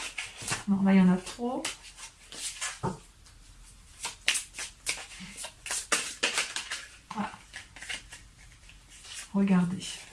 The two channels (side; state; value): both; identical; correlation 1.00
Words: Non, là, il y en a trop. Voilà. Regardez,